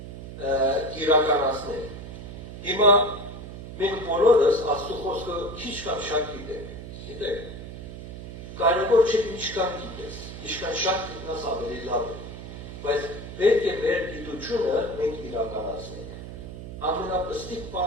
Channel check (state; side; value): noise; right; hum, 10 dB below the sound